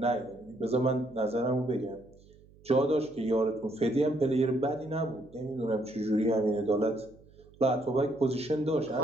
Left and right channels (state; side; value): noise; right; hum, 26 dB below the sound